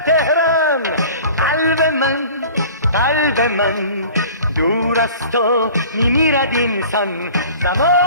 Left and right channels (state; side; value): inverted; both; correlation -0.44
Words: قلب من دور از تو میمیرد اینسان.